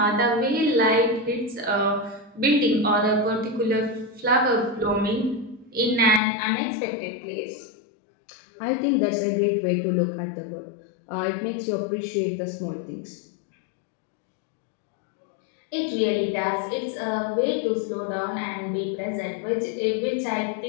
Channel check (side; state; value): right; drops out; at 6.2 s